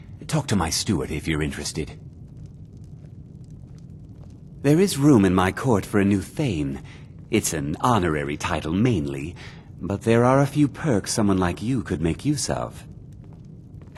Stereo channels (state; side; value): identical; both; correlation 1.00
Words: Talk to my steward if you're interested. There is room in my court for a new Thane. It's an honorary title mainly, but there are a few perks someone like you could make use of.